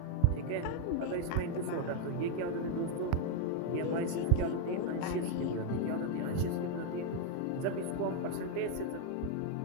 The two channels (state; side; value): different; both; correlation 0.01